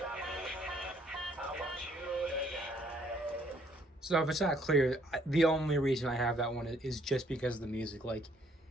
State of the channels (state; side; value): normal; both; correlation 0.65